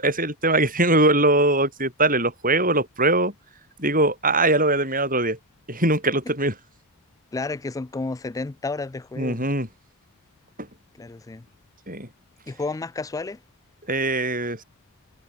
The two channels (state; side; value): normal; both; correlation 0.09